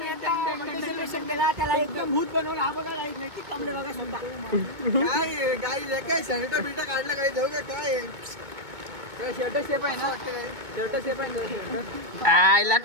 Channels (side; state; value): left; late; 2.2 ms